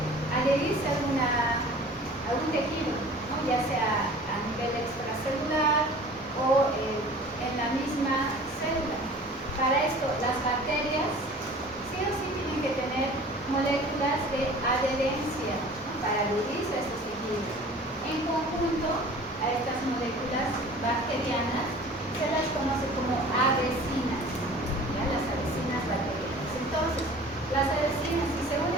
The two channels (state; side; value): normal; both; correlation 0.44